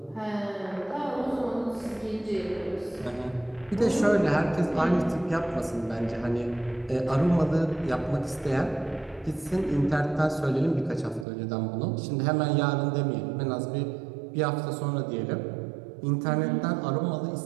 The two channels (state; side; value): drops out; left; at 11.2 s